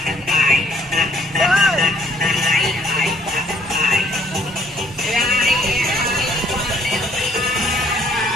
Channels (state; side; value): normal; both; correlation 0.63